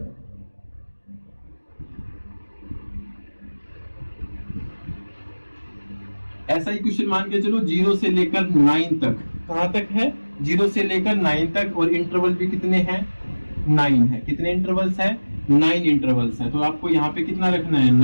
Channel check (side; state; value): both; inverted; correlation -1.00